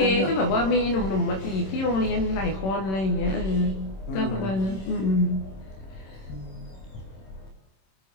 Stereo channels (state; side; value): late; right; 26 ms